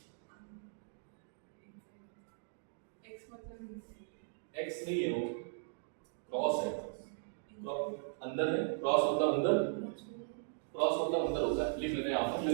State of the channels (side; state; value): left; silent; digital silence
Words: एक्स नहीं है, वो क्रॉस है, अंदर है। क्रॉस मतलब अंदर, क्रॉस मतलब अंदर होता है। लिख लेते हैं यहाँ पर,